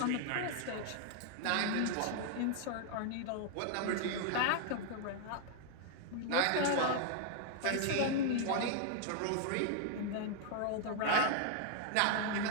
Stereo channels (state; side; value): different; both; correlation 0.00